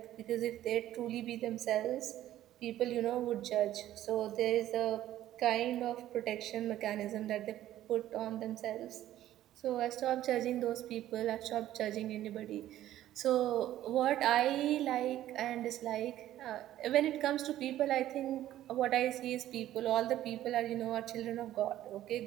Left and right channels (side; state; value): left; quieter; 13.2 dB